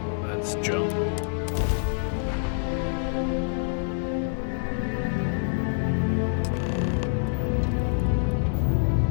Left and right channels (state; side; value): silent; right; 61 dB below the other